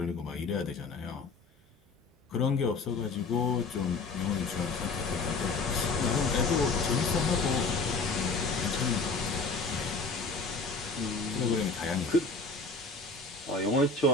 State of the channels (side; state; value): right; quieter; 4.0 dB